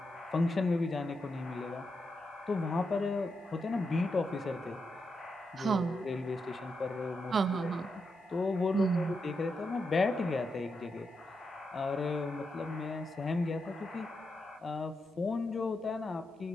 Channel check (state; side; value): normal; both; correlation 0.85